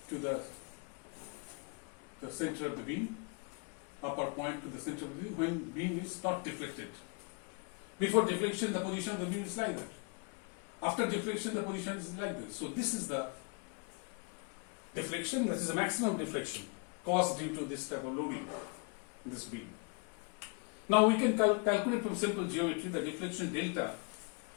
center of the beam, upper point to the center of the beam when beam is not deflected. Before deflection, the position of the beam is like that. After deflection, the position is like this. So this is the deflection, that is the maximum deflection caused due to this type of loading in this beam. Now we can calculate from simple geometry the deflection delta.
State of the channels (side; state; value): right; quieter; 34.5 dB